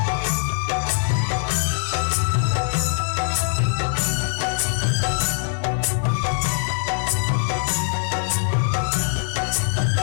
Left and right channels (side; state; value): right; silent; 56 dB below the other